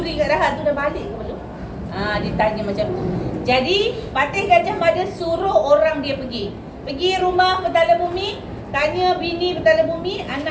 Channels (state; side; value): identical; both; correlation 1.00